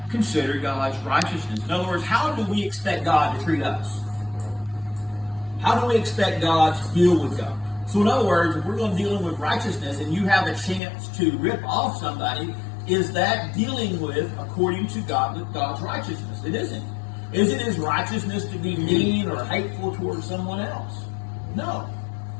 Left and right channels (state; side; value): drops out; right; at 10.8 s